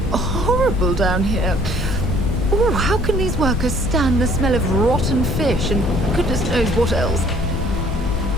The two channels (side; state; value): both; normal; correlation 0.57